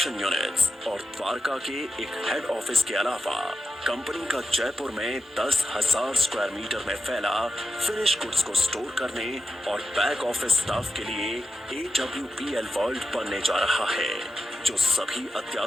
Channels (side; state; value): both; normal; correlation 0.88